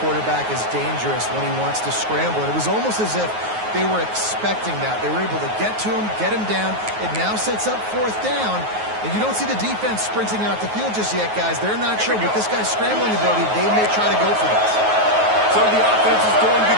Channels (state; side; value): late; left; 9.4 ms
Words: quarterback is dangerous when he wants to scramble. And it was almost as if they were expecting that. They were able to get to him, get him down. It now sets up fourth down. And you don't see the defense sprinting out the field just yet, guys. They're not sure. With this guy's scrambling ability, they may try to go for this. So the offense is going to